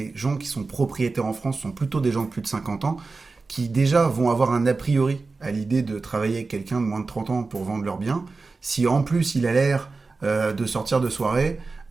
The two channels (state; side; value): quieter; left; 3.9 dB